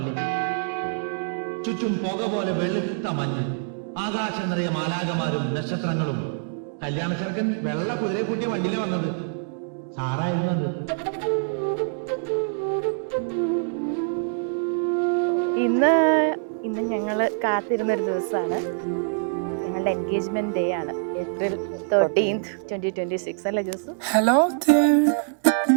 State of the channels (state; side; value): silent; left; digital silence